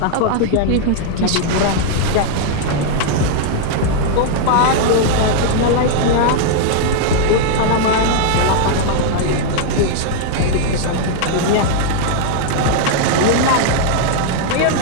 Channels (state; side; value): different; both; correlation -0.01